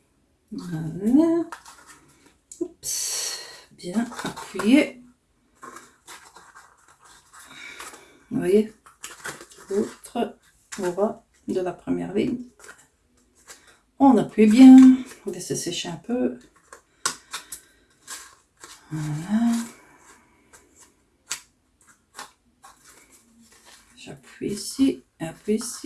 Voilà. Oups. Bien appuyé. voyez, l'autre aura de la première ligne. On appuie bien, on laisse sécher un peu. Voilà. J'appuie ici, appuie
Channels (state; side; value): identical; both; correlation 1.00